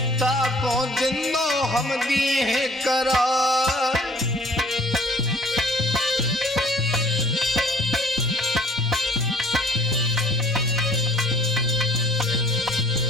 ताको जिंदो हम दिए हैं करार।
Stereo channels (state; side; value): normal; both; correlation 0.55